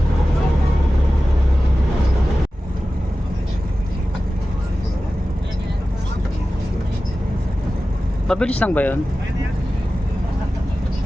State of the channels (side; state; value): both; normal; correlation 0.95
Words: Mabilis lang ba yun?